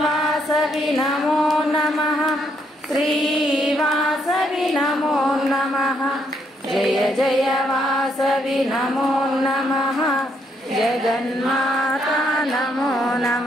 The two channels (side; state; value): both; normal; correlation 0.73